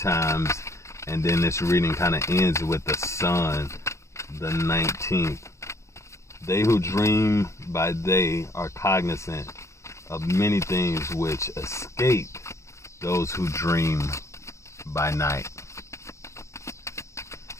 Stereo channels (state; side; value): late; right; 0.14 ms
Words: and then this reading kind of ends with the sun, the 19th. They who dream by day are cognizant of many things which escape those who dream by night.